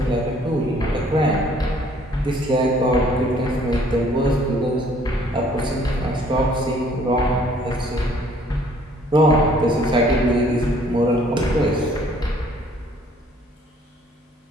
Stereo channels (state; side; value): normal; both; correlation 0.59